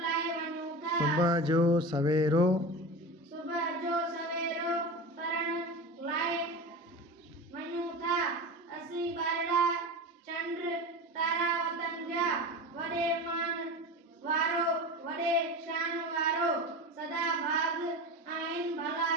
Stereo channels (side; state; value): both; normal; correlation 0.28